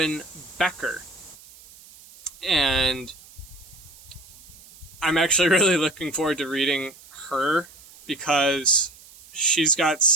Becker. And I'm actually really looking forward to reading her because she's got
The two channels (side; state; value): right; noise; hiss, 22 dB below the sound